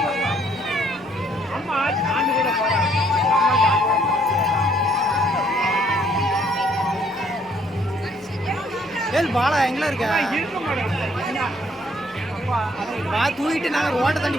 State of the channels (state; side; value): normal; both; correlation 0.65